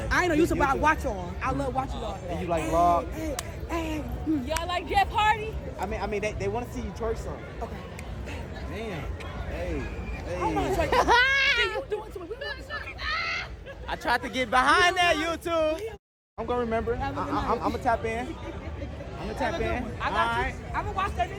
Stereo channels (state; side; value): identical; both; correlation 1.00